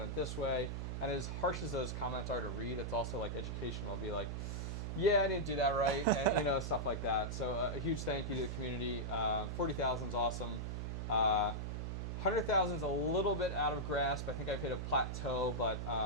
it this way. And as harsh as those comments are to read, it's also like educational. I'll be like, yeah, I didn't do that right, and stuff like that. So a huge thank you to the community. 40,000 is awesome. 100,000 is a little bit out of grasp. I think I've hit a plateau, but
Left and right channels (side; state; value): right; noise; hum, 3 dB below the sound